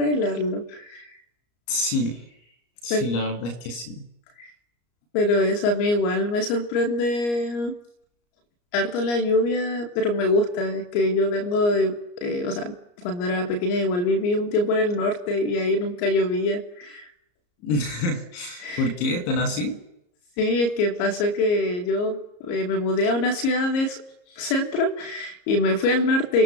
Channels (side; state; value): right; late; 34 ms